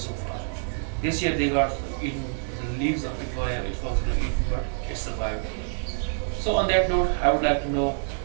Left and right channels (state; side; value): silent; left; 57 dB below the other